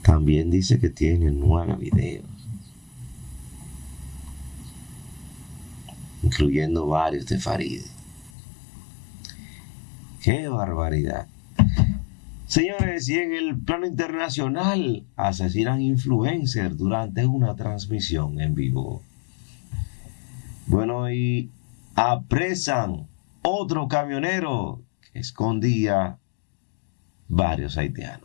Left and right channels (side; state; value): right; drops out; at 8.3 s